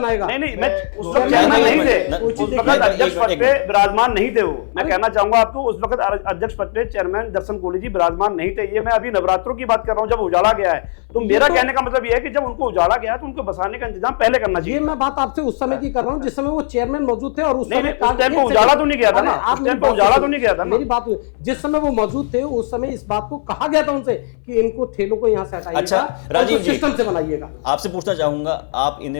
नहीं, मैं चेयरमैन नहीं थे, अध्यक्ष पद पे विराजमान नहीं थे वो। मैं कहना चाहूंगा आपको, उस वक्त अध्यक्ष पद पे चेयरमैन दर्शन कोहली जी विराजमान नहीं थे। ये मैं अभी नवरात्रों की बात कर रहा हूँ, जब उजाला गया है। तो मेरा कहने का मतलब ये है कि जब उनको उजाला गया तो उनको बसाने का इंतजाम पहले करना चाहिए। ये मैं बात आपसे उस समय की कर रहा हूँ जिस समय वो चेयरमैन मौजूद थे, और उस समय उजाला तो नहीं गया था, आप उजाला तो नहीं गया था, मेरी बात जिस समय वो मौजूद थे उस समय इस बात को कहा गया था उनसे कि इनको ठेलों को यहाँ से हटाइएगा। अच्छा राजीव जी, सिस्टम से बनाइएगा। आपसे पूछना चाहूंगा, आप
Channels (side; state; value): right; silent; 63 dB below the other